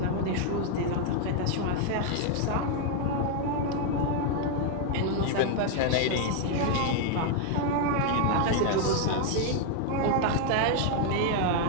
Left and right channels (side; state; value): both; different; correlation 0.00